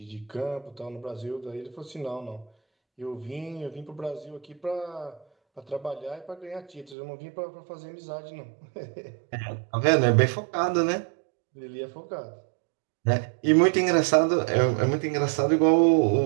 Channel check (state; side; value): drops out; left; at 7.0 s